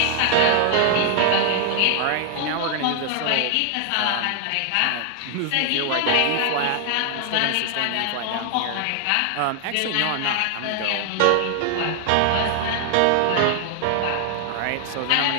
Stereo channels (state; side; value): different; both; correlation 0.00